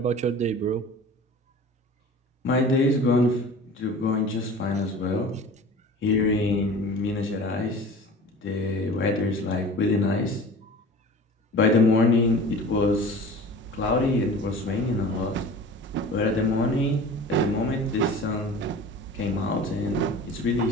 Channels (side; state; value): both; normal; correlation 0.39